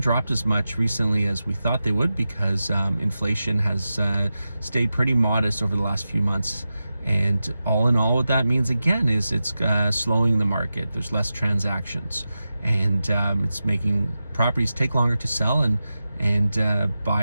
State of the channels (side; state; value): both; inverted; correlation -0.92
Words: dropped as much recently as we thought they would because inflation has stayed pretty modest over the last few months. And all in all, what that means again is it's slowing the market. There's less transactions, and it's making properties take longer to sell, and